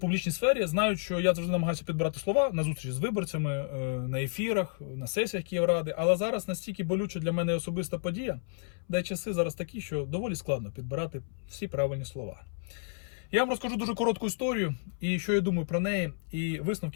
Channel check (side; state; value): right; silent; 57 dB below the other